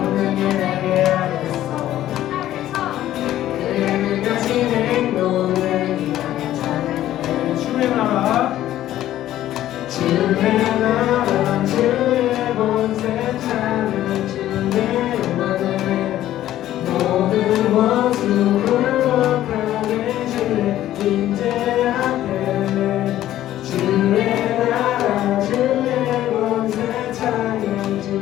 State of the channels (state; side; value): quieter; right; 13.2 dB